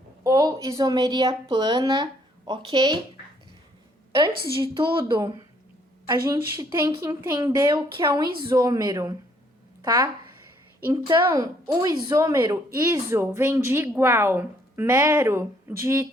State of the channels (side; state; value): both; normal; correlation 0.66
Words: ou isomeria plana, ok? Antes de tudo, a gente tem que entender o que é um isômero, tá? Então, o isômero, iso, vem de igual, mero, de